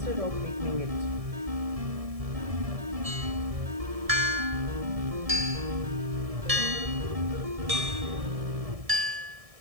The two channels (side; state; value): left; late; 1.7 ms